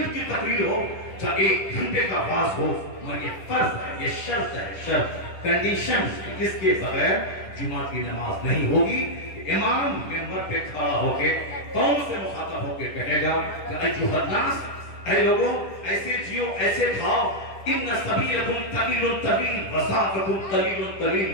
کی تقریر ہو، چاہے 1 گھنٹے کا واز ہو، مگر یہ فرض ہے، یہ شرط ہے، شرط کنڈیشن، جس کے بغیر جمعہ کی نماز نہیں ہوگی۔ امام ممبر پہ کھڑا ہو کے قوم سے مخاطب ہو کے کہے گا کہ ایھا الناس، اے لوگوں، ایسے جیو، ایسے کھاؤ، ان سبیلکم طویل طویل وسعکم طویل طویل،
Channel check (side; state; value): right; late; 10 ms